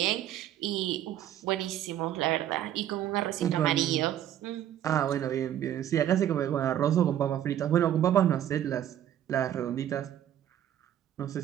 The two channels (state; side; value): quieter; left; 11.2 dB